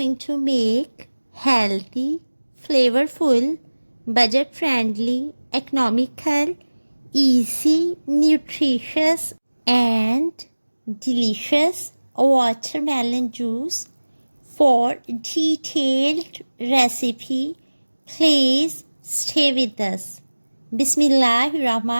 to make healthy, flavorful, budget-friendly, economical, easy, nutritious and delicious watermelon juice. For detailed recipe, please stay with us.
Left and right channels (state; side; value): inverted; both; correlation -1.00